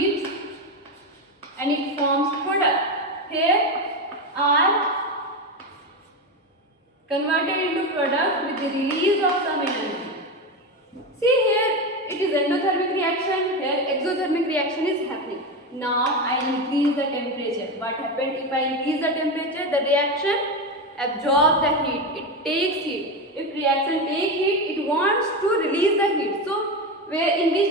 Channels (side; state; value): both; normal; correlation 0.17